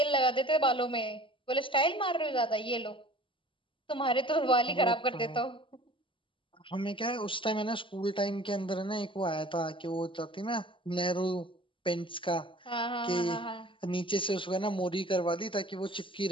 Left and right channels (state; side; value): late; right; 0.25 ms